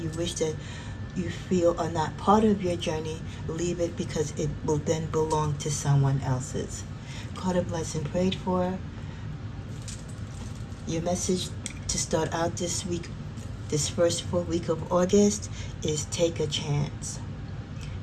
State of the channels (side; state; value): both; identical; correlation 1.00